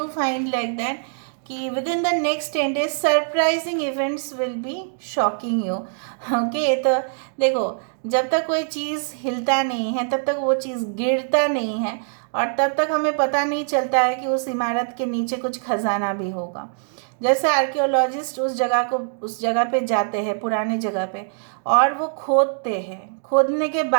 find like that कि within the next 10 days surprising events will be shocking you. Okay, तो देखो जब तक कोई चीज़ हिलता नहीं है तब तक वो चीज़ गिरता नहीं है, और तब तक हमें पता नहीं चलता है कि उस इमारत के नीचे कुछ खजाना भी होगा। जैसे आर्कियोलॉजिस्ट उस जगह पे जाते हैं, पुरानी जगह पे, और वो खोदते हैं, खोदने के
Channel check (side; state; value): left; silent; digital silence